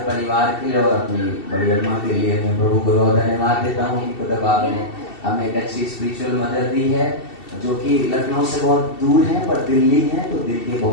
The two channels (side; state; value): right; late; 2.7 ms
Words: परिवार के लिए और अपनी बड़ी अम्मा के लिए मैं प्रभु को बहुत धन्यवाद देता हूँ कि खुद आपने हमें एक अच्छी स्पिरिचुअल मदर दी है, जो कि लखनऊ से बहुत दूर है पर दिल्ली है तो दिल के